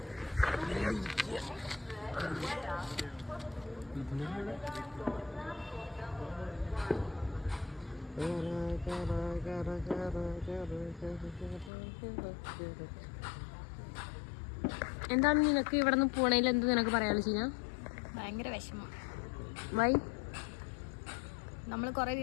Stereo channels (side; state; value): right; drops out; at 11.7 s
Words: എന്താണ് നിനക്ക് ഇവിടെ നിന്ന് പോണേൽ എന്ത് നിനക്ക് പറയാനുള്ള ചീന? ഭയങ്കര വിഷമം. വൈ? നമ്മള് കൊറേ